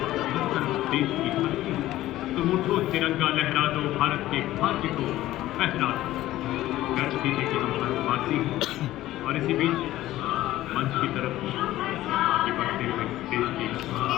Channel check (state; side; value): quieter; right; 15.2 dB